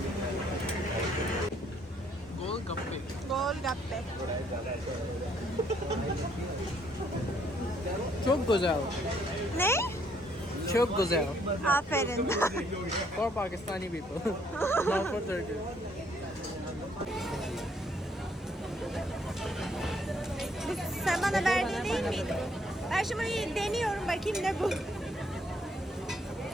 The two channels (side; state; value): both; normal; correlation 0.67